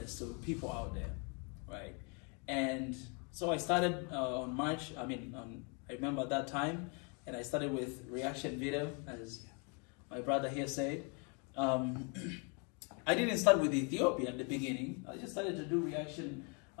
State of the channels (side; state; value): right; quieter; 35.5 dB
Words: to people out there, right? And so I started on March. I remember at that time, and I started with reaction video, as my brother here said. I didn't start with Ethiopia in the beginning. I just started to do reaction